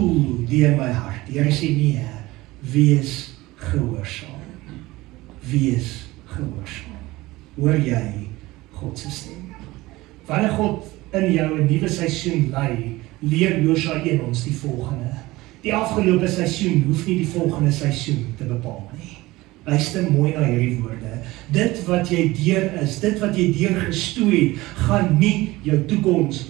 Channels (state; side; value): quieter; left; 19.4 dB